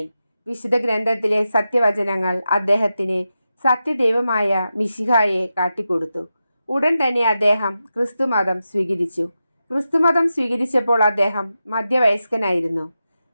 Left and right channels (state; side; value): inverted; both; correlation -0.90